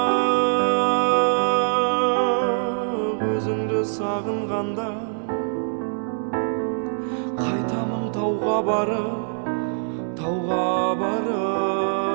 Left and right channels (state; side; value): silent; left; digital silence